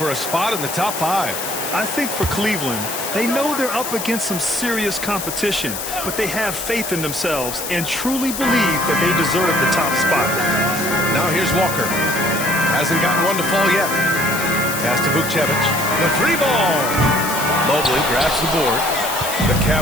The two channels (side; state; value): left; noise; hiss, 6 dB below the sound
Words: a spot in the top 5. I think for Cleveland, they know they're up against some serious competition, but they have faith in themselves and truly believe that they deserve the top spot. Now here's Walker. Hasn't gotten one to fall yet. Pass to Vukcevic. The 3 ball. Mobley grabs the board. The